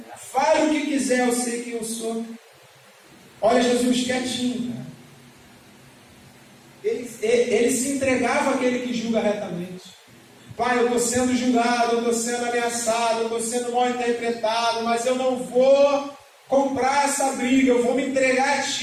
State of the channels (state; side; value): identical; both; correlation 1.00